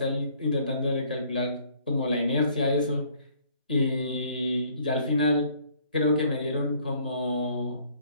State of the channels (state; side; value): inverted; both; correlation -0.60